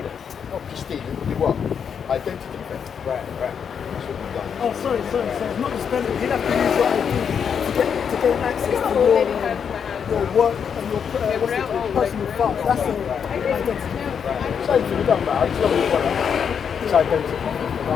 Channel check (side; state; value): right; quieter; 7.2 dB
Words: Not just stealing, it'll be what? Identity theft. Right. That's what we've done. Oh, sorry. It's not just spending. You'd have to use your ID to gain access to your work and your personal files. That's an identity. Same thing, it doesn't matter. It's not what it's